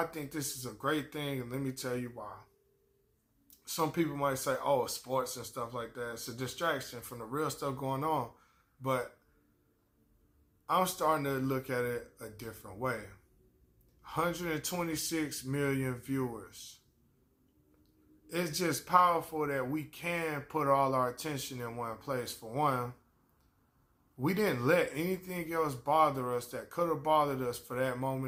think this is a great thing, and let me tell you why. Some people might say, oh, sports and stuff like that, it's a distraction from the real stuff going on. But I'm starting to look at it a different way. 126 million viewers. It's just powerful that we can put all our attention in one place. For one, we didn't let anything else bother us that could have bothered us for that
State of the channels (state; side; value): identical; both; correlation 1.00